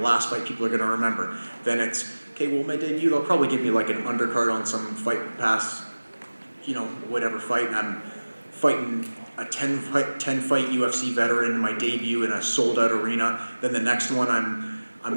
fight people are gonna remember." Then it's okay. Well, my debut, they'll probably give me like an undercard on some Fight Pass, whatever fight, and I'm fighting a 10 fight UFC veteran in my debut in a sold out arena. Then the next one I'm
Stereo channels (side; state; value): both; inverted; correlation -1.00